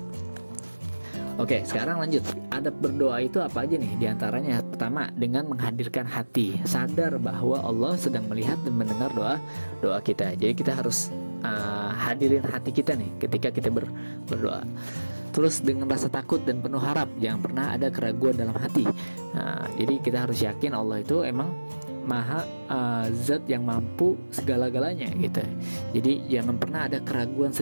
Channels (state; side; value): inverted; both; correlation -1.00